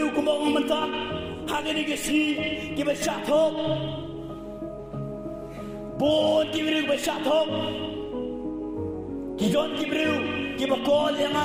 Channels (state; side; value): identical; both; correlation 1.00